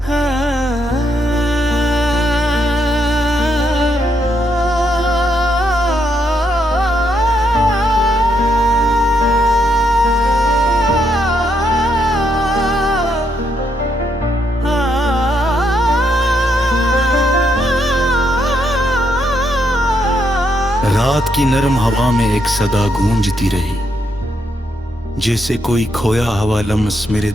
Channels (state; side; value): normal; both; correlation 0.77